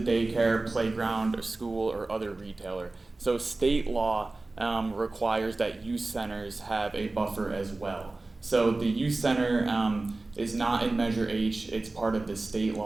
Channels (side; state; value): left; quieter; 3.2 dB